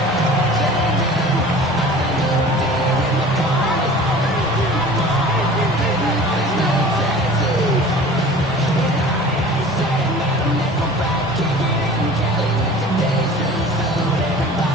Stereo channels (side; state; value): both; normal; correlation 0.43